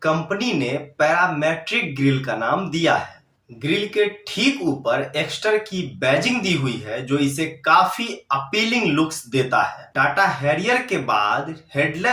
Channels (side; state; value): both; identical; correlation 1.00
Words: कंपनी ने पैरामेट्रिक ग्रिल का नाम दिया है। ग्रिल के ठीक ऊपर एक्स्टर की बैजिंग दी हुई है, जो इसे काफी अपीलिंग लुक्स देता है। टाटा हैरियर के बाद